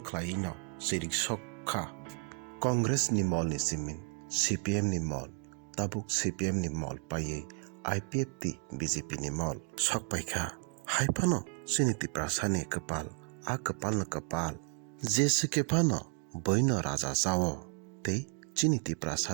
khlaiwi no sirik sokha Congress ni mol ni simin CPM ni mol tabuk CPM ni mol paye IPF ti BJP ni mol sokpaikha haifano chini Tripura sani kapal a kapal na kapal jese kepano boino raja jawo tei chini Tripura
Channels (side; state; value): left; quieter; 38.4 dB